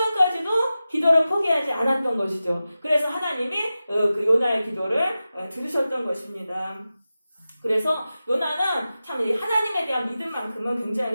기도를 포기하지 않았던 것이죠. 그래서 하나님이 그 요나의 기도를 들으셨던 것입니다. 그래서 요나는 참 하나님에 대한 믿음만큼은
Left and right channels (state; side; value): inverted; both; correlation -0.94